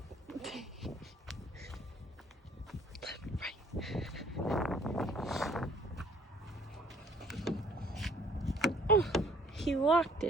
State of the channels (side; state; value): both; normal; correlation 0.58